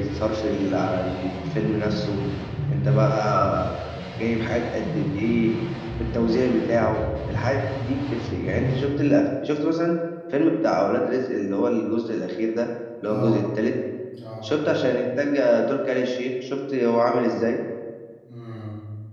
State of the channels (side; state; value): both; identical; correlation 1.00